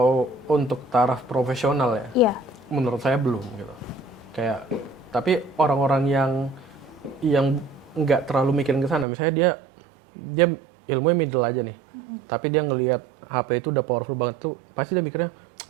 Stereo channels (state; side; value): drops out; left; at 9.1 s